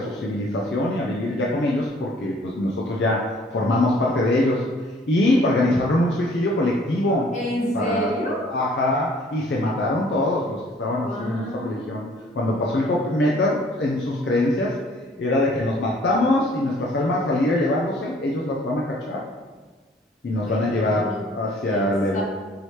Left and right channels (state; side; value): normal; both; correlation 0.57